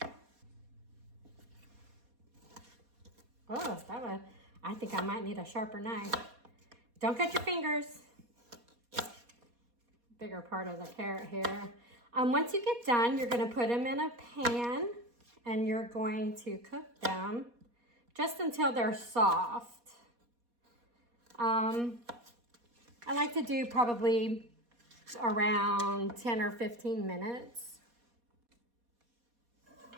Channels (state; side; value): late; left; 4.2 ms